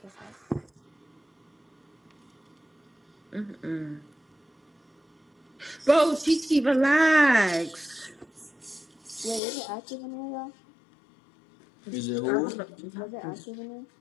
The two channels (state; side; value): drops out; right; at 9.4 s